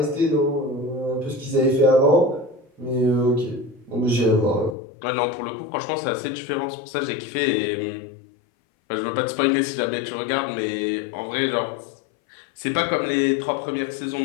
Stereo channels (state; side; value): drops out; right; at 4.8 s